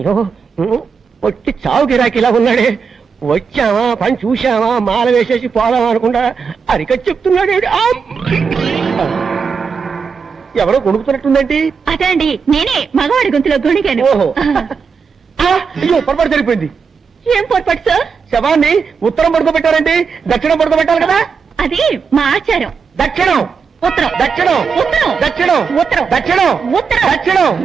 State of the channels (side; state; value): left; quieter; 5.8 dB